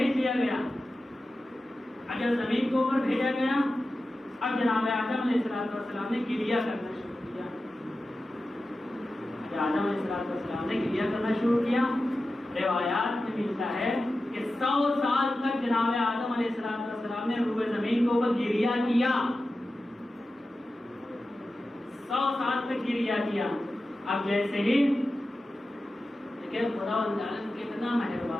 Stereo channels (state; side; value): normal; both; correlation 0.93